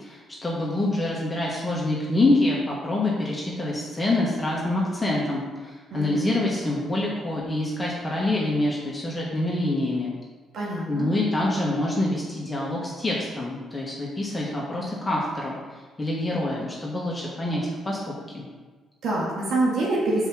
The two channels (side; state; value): both; normal; correlation 0.78